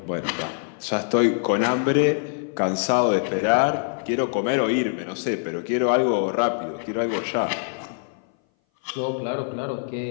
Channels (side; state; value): right; silent; 59 dB below the other